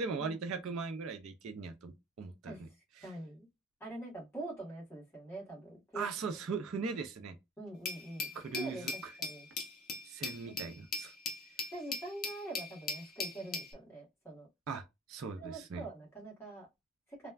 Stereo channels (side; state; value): both; normal; correlation 0.44